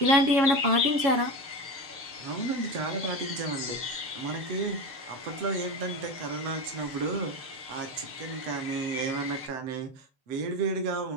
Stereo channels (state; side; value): late; left; 7.3 ms